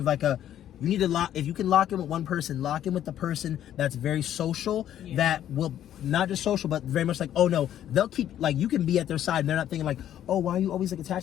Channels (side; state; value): right; quieter; 11.1 dB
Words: like you need to lock, if you can lock in with one person, lock in with the person that's very social, that will not just social, but very much like, oh no, they'll keep, like, you can be at their side and they're not thinking like, oh, why are you always like